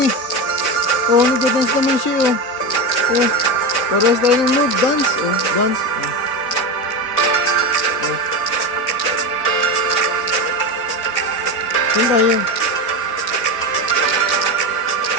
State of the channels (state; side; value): late; right; 4.0 ms